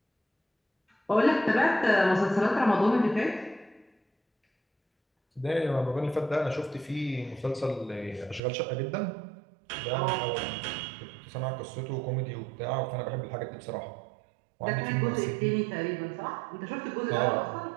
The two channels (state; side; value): drops out; left; at 8.4 s